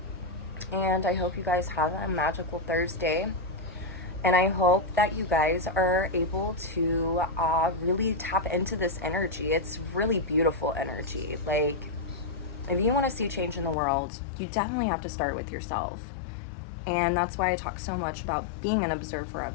And I hope you guys have a magical Thursday. And I hope that you guys are able to really tap into this energy. It's really beautiful energy. Like, if you want to see change in the world, you definitely have to start with yourself. And that's why I talk so much about being an observer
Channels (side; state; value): right; drops out; at 13.8 s